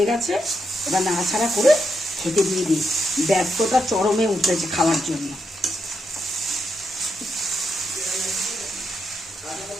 গেছে। এবার নাড়াচাড়া করে খেতে দিয়ে দিই। ব্যর্থতা চরমে উঠেছে খাওয়ার জন্য।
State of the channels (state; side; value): normal; both; correlation 0.82